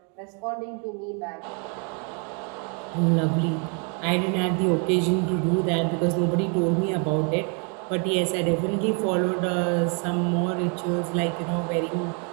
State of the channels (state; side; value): quieter; left; 37.4 dB